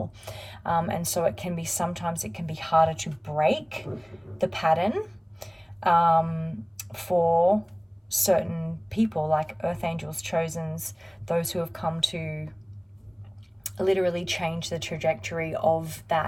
and so sometimes it can be harder to break the pattern for certain people, like earth angels, chosens, those who have come to literally change the trajectory of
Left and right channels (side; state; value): both; identical; correlation 1.00